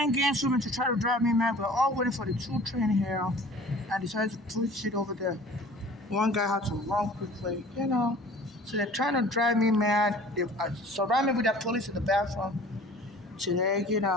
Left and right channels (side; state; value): both; normal; correlation 0.46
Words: games with me to try to drive me mad. We're all waiting for the 2 train here, and decided to push it over there. One guy had to run quickly. So they're trying to drive me mad. They surround me with the police in the bathroom today.